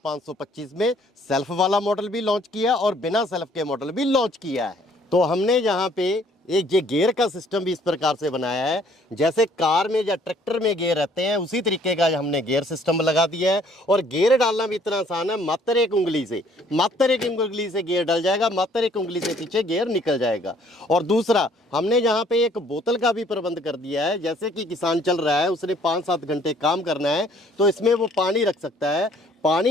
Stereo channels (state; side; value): normal; both; correlation 0.60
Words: में सेल्फ वाला मॉडल भी लॉन्च किया और बिना सेल्फ के मॉडल भी लॉन्च किया है। तो हमने यहाँ पे एक ये गियर का सिस्टम भी इस प्रकार से बनाया है, जैसे कार में या ट्रैक्टर में गियर रहते हैं उसी तरीके का हमने गियर सिस्टम लगा दिया है। और गियर डालना भी इतना आसान है, मात्र एक उंगली से गियर डल जाएगा, मात्र एक उंगली से पीछे गियर निकल जाएगा। और दूसरा हमने यहाँ पे एक बोतल का भी प्रबंध कर दिया है, जैसे कि किसान चल रहा है, उसने 5-7 घंटे काम करना है तो इसमें वो पानी रख सकता है,